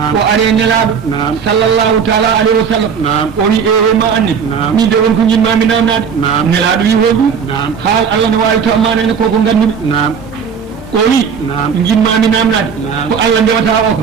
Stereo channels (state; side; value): quieter; left; 6.6 dB